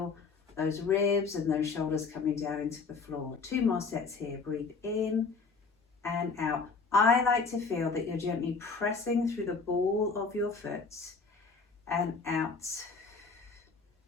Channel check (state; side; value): quieter; right; 4.7 dB